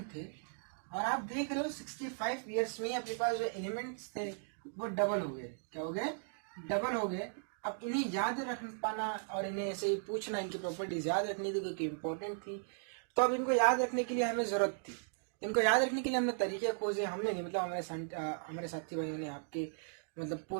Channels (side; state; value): left; silent; digital silence